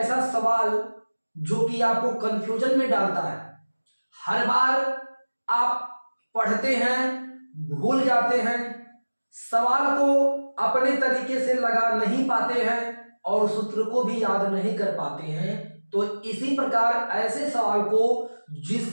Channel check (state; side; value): inverted; both; correlation -1.00